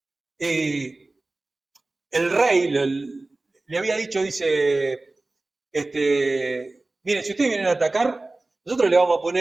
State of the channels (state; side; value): quieter; left; 3.1 dB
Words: el rey le había dicho, dice, miren, si ustedes vienen a atacar, nosotros le vamos a